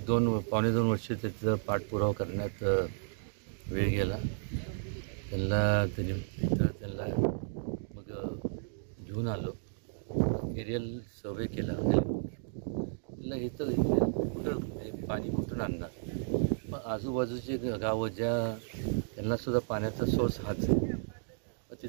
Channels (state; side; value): silent; left; digital silence